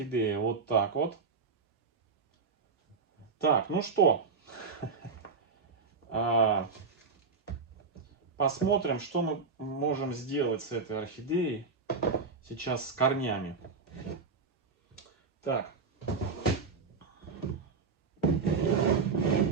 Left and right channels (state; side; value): quieter; left; 4.8 dB